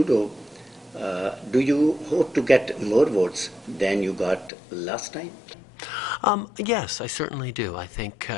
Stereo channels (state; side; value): drops out; right; at 4.5 s